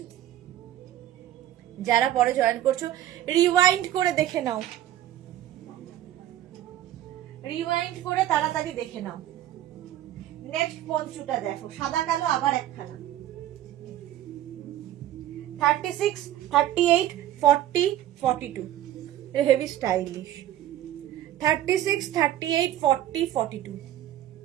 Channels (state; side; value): quieter; left; 12.9 dB